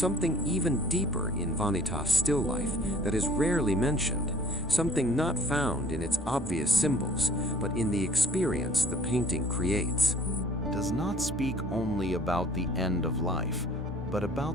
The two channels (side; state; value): both; normal; correlation 0.53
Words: even deeper in Vanitas Still Life that is rarely mentioned, something not found in its obvious symbols, but in the experience the painting creates. Does not speak only about the end of life, but